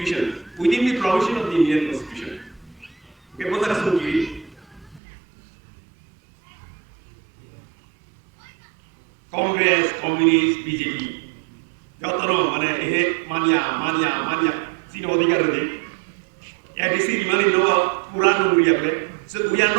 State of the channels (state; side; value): drops out; left; at 5.0 s